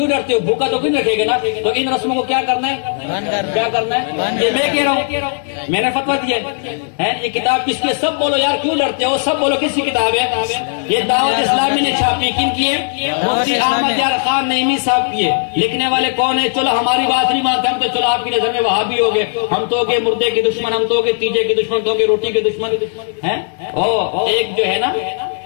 ڈرتے ہو؟ بھوکا تو کیوں رکھے گا نا. تو ان رسموں کو کیا کرنا ہے؟ کیا کرنا ہے؟ یہ میں کہہ رہا ہوں، میں نے فتویٰ دیا ہے. یہ کتاب کس کی؟ سب بولو یار، کیوں ڈرتے ہو؟ سب بولو کس کی کتاب ہے؟ یہ دعوت اسلامی نے چھاپی. کن کی ہے؟ مفتی احمد یار خان نعیمی صاحب کی ہے. لکھنے والے کون ہے؟ چلو ہماری بات نہیں مانتے ہم تو، چلو آپ کی نظر میں وہابی ہو گئے، ہم تو ہو گئے مردے کے دشمن، ہم تو ہو گئے تیجے کے دشمن، تو ہو گئے روٹی کے دشمن ہیں. ایک جو ہے نا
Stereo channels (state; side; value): silent; right; 68 dB below the other